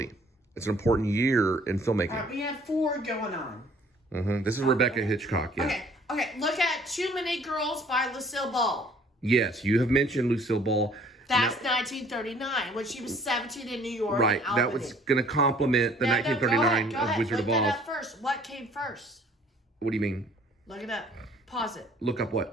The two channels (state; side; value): normal; both; correlation 0.56